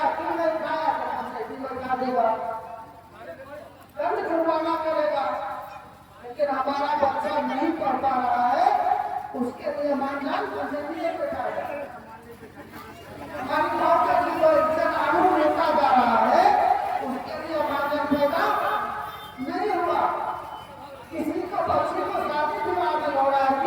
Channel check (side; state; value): both; identical; correlation 1.00